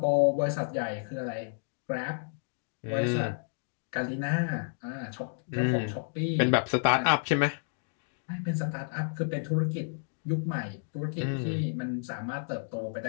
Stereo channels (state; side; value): silent; right; digital silence